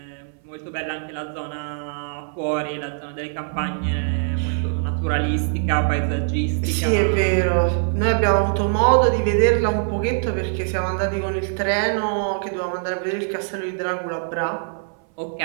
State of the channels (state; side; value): silent; left; 59 dB below the other